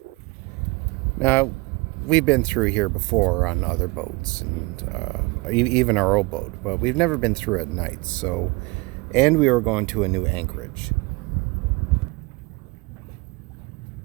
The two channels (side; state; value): left; quieter; 25.3 dB